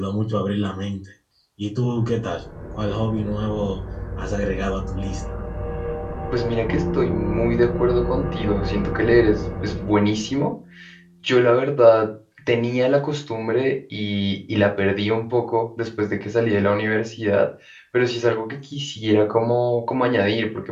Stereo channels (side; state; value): both; identical; correlation 1.00